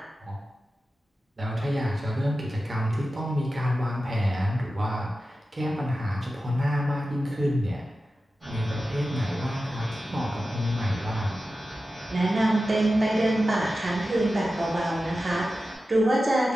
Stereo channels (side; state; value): both; normal; correlation 0.93